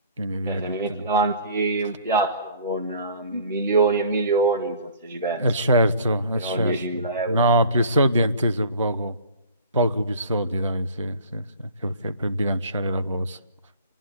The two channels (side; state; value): both; inverted; correlation -0.48